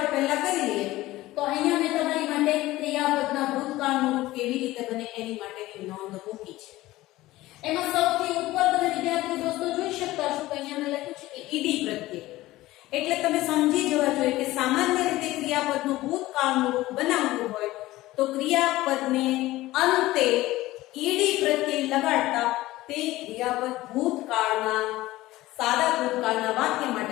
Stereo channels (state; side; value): quieter; right; 17.4 dB